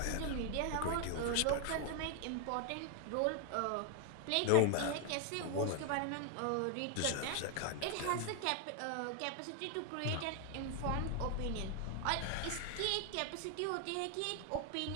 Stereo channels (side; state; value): both; different; correlation 0.00